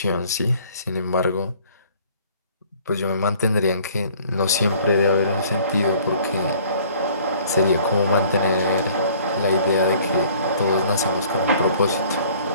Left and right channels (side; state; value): both; inverted; correlation -0.55